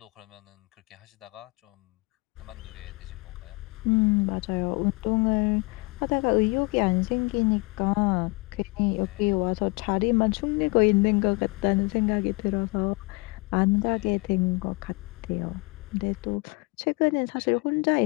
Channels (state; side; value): quieter; right; 27.8 dB